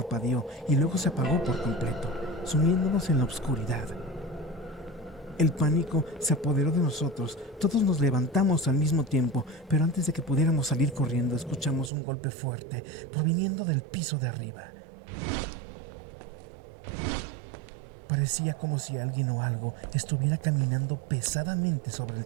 y luego se apagó por completo, sumiéndonos en la oscuridad. El pánico se apoderó de nosotros. Todos nos levantamos al mismo tiempo, pero antes de que pudiéramos salir corriendo, escuchamos un golpe fuerte proviniendo del piso de arriba. Parecía como si alguien o algo estuviera caminando pesadamente sobre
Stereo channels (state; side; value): drops out; left; at 11.9 s